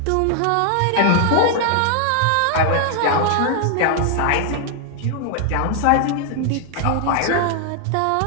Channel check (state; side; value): different; both; correlation 0.00